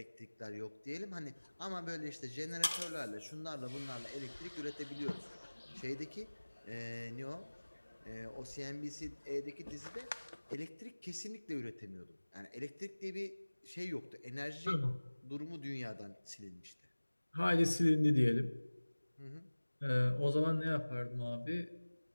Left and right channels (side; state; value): both; inverted; correlation -1.00